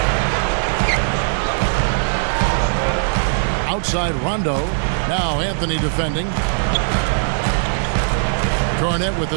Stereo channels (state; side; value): silent; left; digital silence